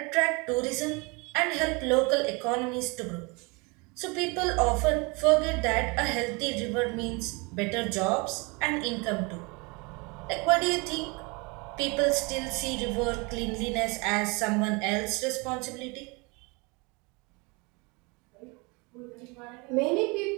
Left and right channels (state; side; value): quieter; left; 28.6 dB